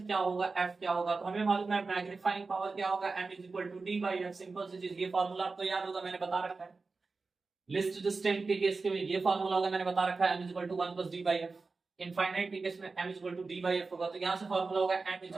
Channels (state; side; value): quieter; left; 4.0 dB